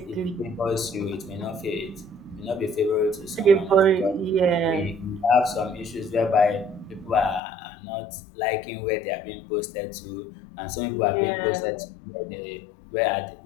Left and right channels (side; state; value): right; drops out; at 7.4 s